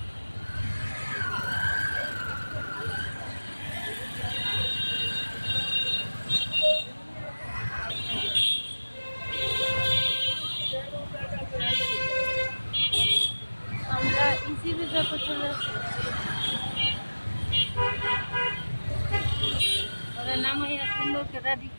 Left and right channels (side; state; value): both; inverted; correlation -1.00